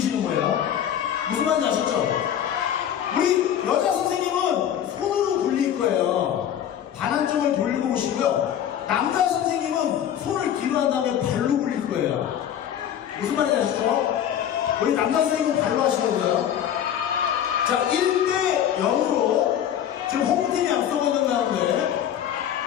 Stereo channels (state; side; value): quieter; right; 10.0 dB